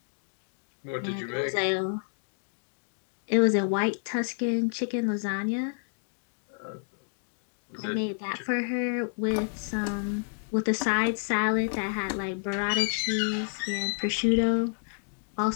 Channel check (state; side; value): silent; right; digital silence